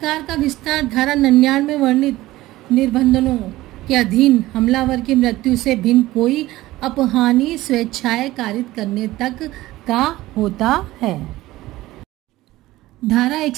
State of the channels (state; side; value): quieter; left; 17.2 dB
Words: का विस्तार धारा 99 में वर्णित निर्बंधों के अधीन हमलावर की मृत्यु से भिन्न कोई अपहानी स्वेच्छाएं कारित करने तक का होता है। धारा